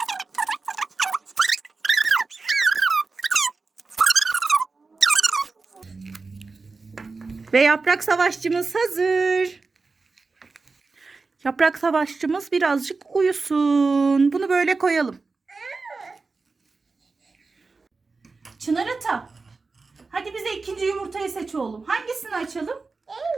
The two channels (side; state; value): left; quieter; 4.1 dB